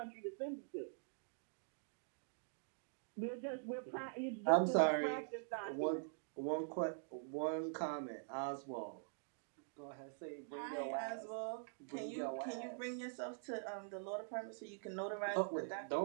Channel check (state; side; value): silent; left; digital silence